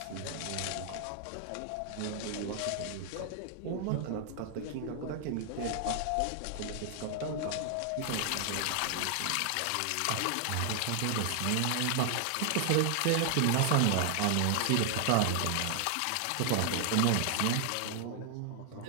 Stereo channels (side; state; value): both; different; correlation 0.00